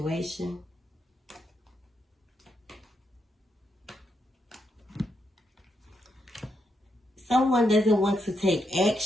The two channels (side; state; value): both; normal; correlation 0.81